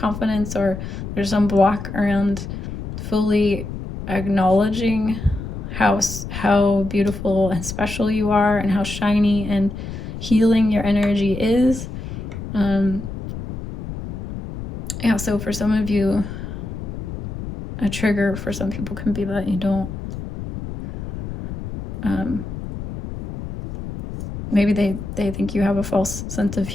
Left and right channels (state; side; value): noise; left; rumble, 8 dB below the sound